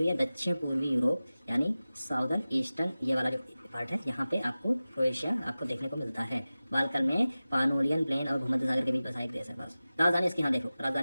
हुई है, दक्षिण पूर्वी यूरोप यानी साउदर्न ईस्टर्न, ये वाला जो पार्ट है यहाँ पे आपको क्रोएशिया आपको देखने को मिलता है। बाल्कन में पानोलियन प्लेन और भूमध्य सागर के बीच बसा एक देश है बस। राजधानी इसकी यहाँ देखो,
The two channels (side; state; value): both; inverted; correlation -0.96